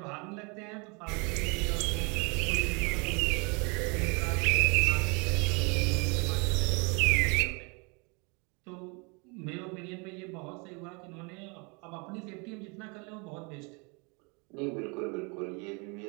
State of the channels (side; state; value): left; quieter; 31.7 dB